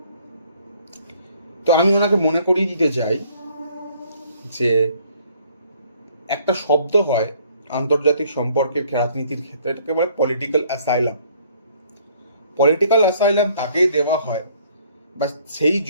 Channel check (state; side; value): inverted; both; correlation -0.61